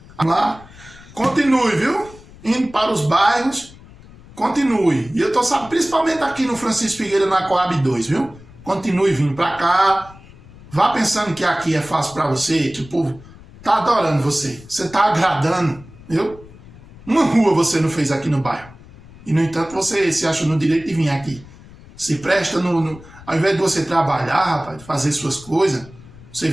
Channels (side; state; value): left; noise; rumble, 21 dB below the sound